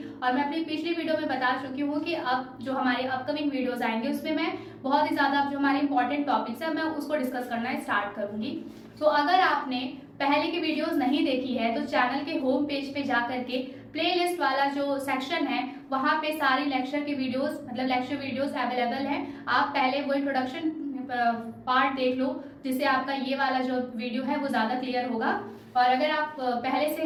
और मैं अपनी पिछली वीडियो में बता चुकी हूँ कि अब जो हमारे अपकमिंग वीडियोस आएंगे उसमें मैं बहुत ही ज्यादा जो हमारे इंपॉर्टेंट टॉपिक्स है मैं उसको डिस्कस करना स्टार्ट करूंगी। तो अगर आपने पहले की वीडियोस नहीं देखी है तो चैनल के होम पेज पे जा करके प्लेलिस्ट वाला जो सेक्शन है वहां पे सारी लेक्चर की वीडियोस, मतलब लेक्चर वीडियोस अवेलेबल है। आप पहले वो इंट्रोडक्शन पार्ट देख लो, जिससे आपका ये वाला जो वीडियो है वो ज्यादा क्लियर होगा। और अगर आप पहले से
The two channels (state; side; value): identical; both; correlation 1.00